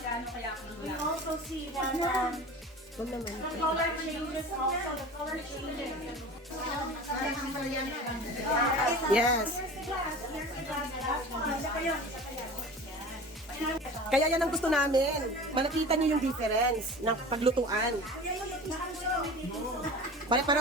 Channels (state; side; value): normal; both; correlation 0.37